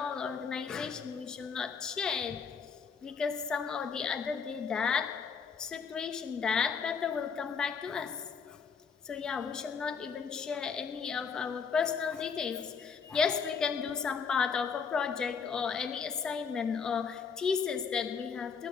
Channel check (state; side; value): quieter; right; 6.0 dB